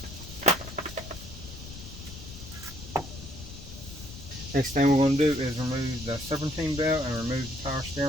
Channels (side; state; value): left; noise; rumble, 13 dB below the sound